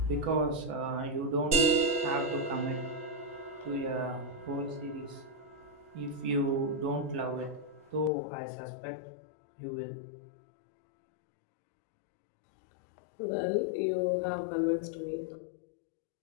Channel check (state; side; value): drops out; right; at 8.1 s